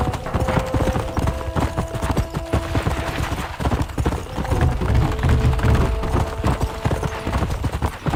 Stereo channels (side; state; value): both; identical; correlation 1.00